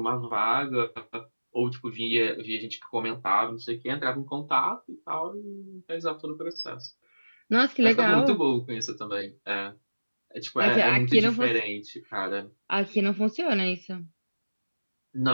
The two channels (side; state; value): both; inverted; correlation -1.00